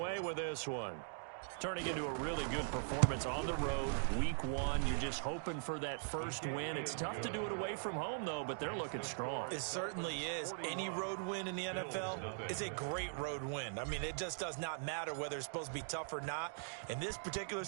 with this one. Turning into a really good performance on the road, Week 1. You're just hoping for that first win. It's tough to do it away from home, though, but they're looking strong. It certainly is. Any road win in the NFL is a great road win. I mean, it just does not matter whether it's supposed to be tough or not. In this particular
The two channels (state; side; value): silent; left; digital silence